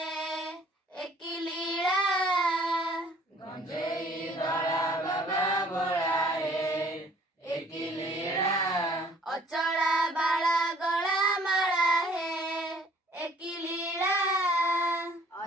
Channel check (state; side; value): normal; both; correlation 0.56